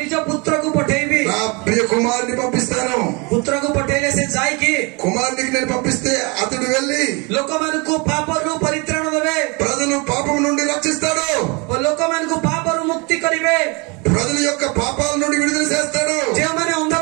ନିଜ పుత్రకు పఠେଇବି। నా ప్రియ కుమారుని పంపిస్తాను. పుత్రకు పఠେଇଲେ ସେ ଯାଇକି కుమారునికి నేను పంపిస్తే అతడు వెళ్లి ଲୋକମାନଙ୍କୁ ପାପରୁ ପରିତ୍ରାଣ ଦେବେ, ప్రజలు పాపం నుండి రక్షిస్తాడు, ଲୋକମାନଙ୍କୁ పాపରୁ ମୁକ୍ତି କରିବେ। ప్రజల యొక్క పాపాల నుండి విడుదల చేస్తాడు. ଯେଉଁମାନେ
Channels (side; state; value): left; quieter; 29.5 dB